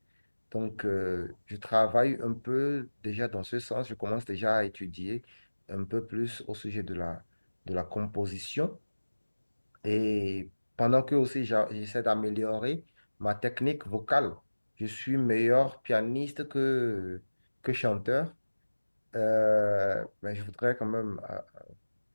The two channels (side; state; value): both; inverted; correlation -1.00